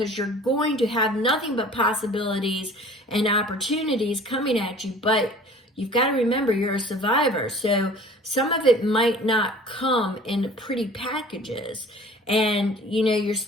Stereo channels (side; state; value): both; normal; correlation 0.47